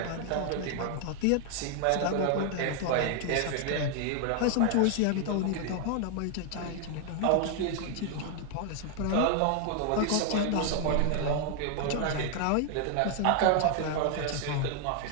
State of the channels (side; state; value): both; different; correlation 0.00